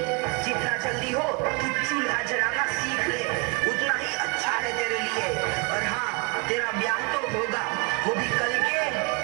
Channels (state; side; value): quieter; left; 30.1 dB